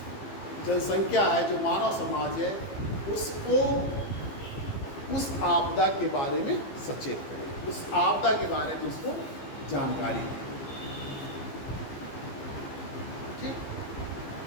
जनसंख्या है, जो मानव समाज है, उसको उस आपदा के बारे में सचेत करें, उस आपदा के बारे में उसको जानकारी दें।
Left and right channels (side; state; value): right; late; 15 ms